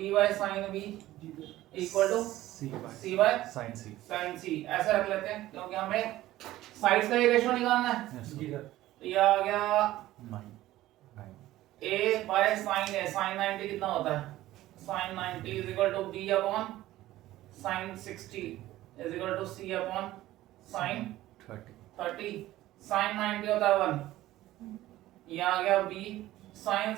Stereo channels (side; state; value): left; quieter; 15.5 dB